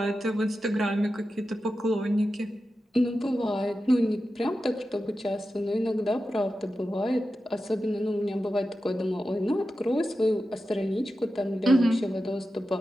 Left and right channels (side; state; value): both; normal; correlation 0.92